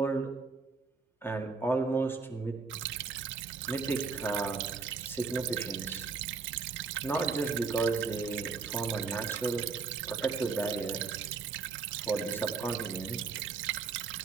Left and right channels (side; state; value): left; quieter; 4.8 dB